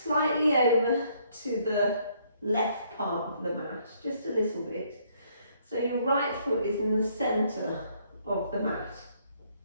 over to the left part of the mat, just a little bit. So your right foot is in the centre of the mat.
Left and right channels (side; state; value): both; inverted; correlation -0.67